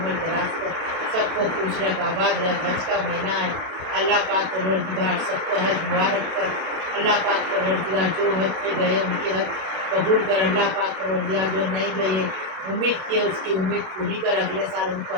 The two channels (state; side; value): late; left; 32 ms